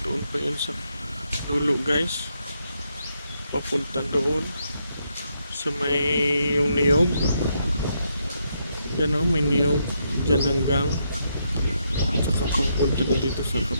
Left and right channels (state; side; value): inverted; both; correlation -0.78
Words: doon pa yun sa dulo, guys. Papunta doon sa may yung niyog. Yan o, may niyog dyan hanggang saka papunta na dito sa